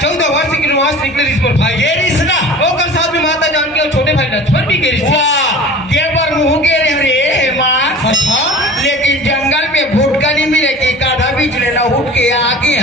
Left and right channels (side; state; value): both; normal; correlation 0.40